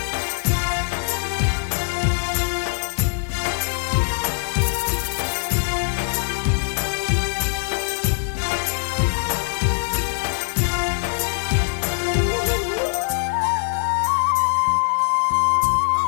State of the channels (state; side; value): silent; right; digital silence